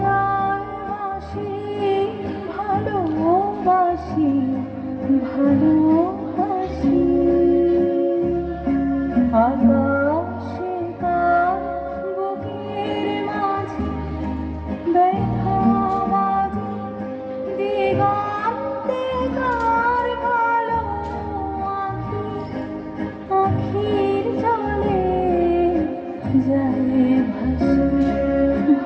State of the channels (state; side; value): identical; both; correlation 1.00